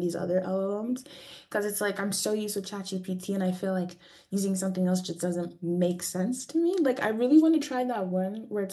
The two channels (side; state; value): both; identical; correlation 1.00